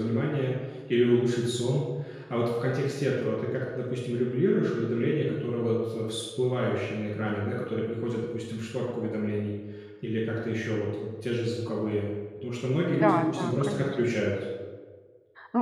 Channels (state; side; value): identical; both; correlation 1.00